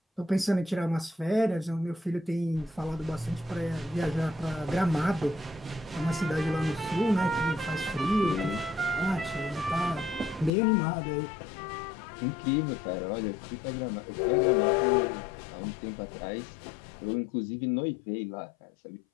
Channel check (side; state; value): right; drops out; at 10.5 s